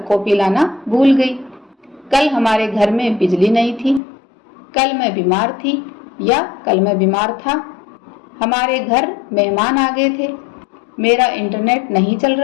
कॉपी लाना भूल गई। कल हमारे घर में बिजली नहीं थी। कल मैं बीमार थी या कल मैं बीमार था। हमारे घर मेहमान आ गए थे। मेरा इंटरनेट नहीं चल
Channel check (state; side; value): drops out; right; at 4.0 s